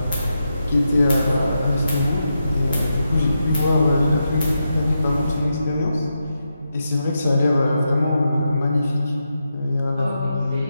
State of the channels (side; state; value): both; inverted; correlation -0.86